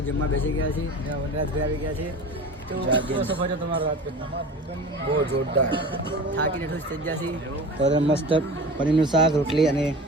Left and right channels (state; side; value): normal; both; correlation 0.35